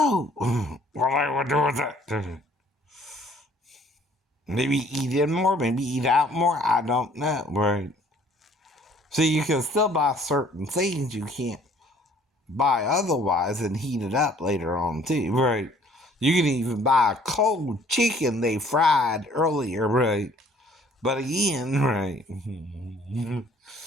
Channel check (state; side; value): normal; both; correlation 0.57